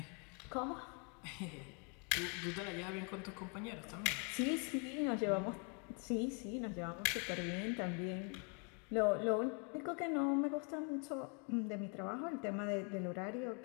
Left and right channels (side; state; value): right; quieter; 36.4 dB